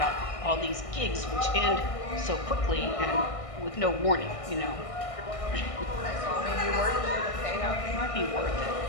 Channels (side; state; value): right; late; 1.6 ms